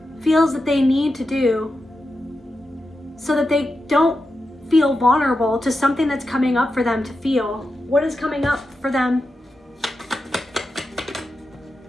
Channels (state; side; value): normal; both; correlation 0.89